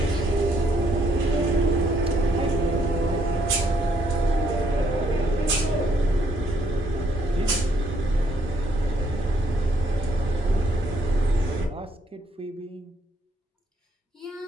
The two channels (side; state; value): both; normal; correlation 0.71